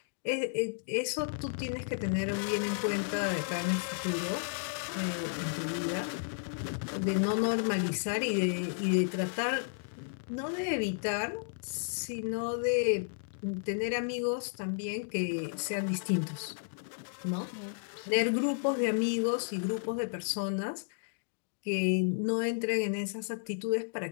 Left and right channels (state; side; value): silent; right; digital silence